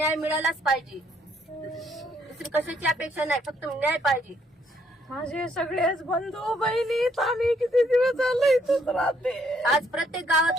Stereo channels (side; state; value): both; normal; correlation 0.69